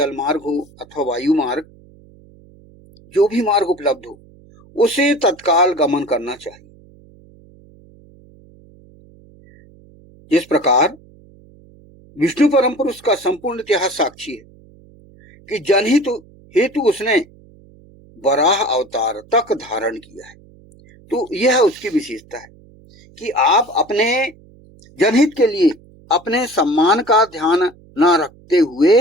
मार्ग हो अथवा वायु मार्ग, जो भी मार्ग उपलब्ध हो, उसे तत्काल गमन करना चाहिए। जिस प्रकार विष्णु परम पुरुष का संपूर्ण इतिहास साक्षी है कि जनहित हेतु उसने वराह अवतार तक धारण किया है। तो यह उसकी विशेषता है कि आप अपने जनहित के लिए अपने सम्मान का ध्यान न रखते हुए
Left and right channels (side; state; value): right; noise; hum, 26 dB below the sound